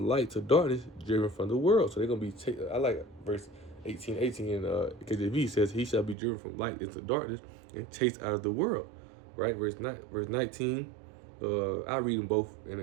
to darkness, driven from the world. So they're gonna be. I like verse 18 in KJV says he shall be driven from light into darkness and chased out of the world, right? Verse 19. I read them both in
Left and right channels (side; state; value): left; drops out; at 6.2 s